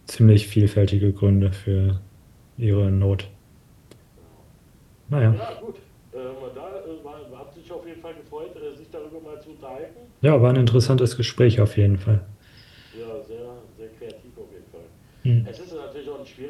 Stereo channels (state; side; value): identical; both; correlation 1.00